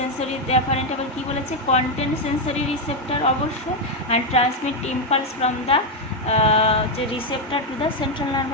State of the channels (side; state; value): both; normal; correlation 0.04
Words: অ্যাফারেন্ট আবার কী বলেছে, কন্টেন্ট সেন্সরি রিসেপ্টার অবশ্য, and transmit impulse from the যে receptor to the central